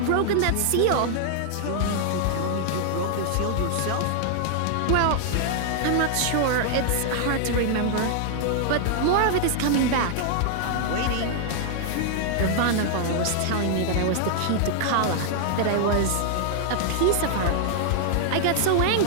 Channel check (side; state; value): both; different; correlation 0.00